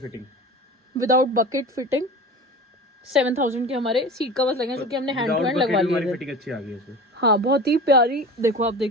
विदाउट बकेट फिटिंग 7,000 के हमारे सीट कवर्स लगे, जो कि हमने हैंड टू हैंड लगवा लिए थे। फिटिंग अच्छी आ गई है। हाँ, बहुत ही प्यारी, देखो आप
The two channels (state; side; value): normal; both; correlation 0.35